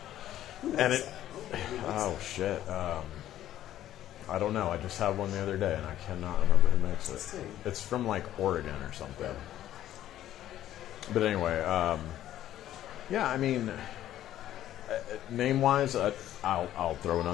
Who and makes it. that? Who makes Oh that? shit! I don't know. I just had one the other day, and I cannot remember who makes Let's see. it. It's from like Oregon or something. But anyway, yeah. I mean, name-wise, I'll throw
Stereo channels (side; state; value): right; quieter; 12.6 dB